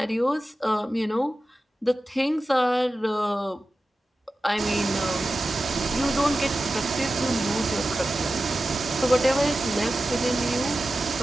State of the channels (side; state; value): both; normal; correlation 0.94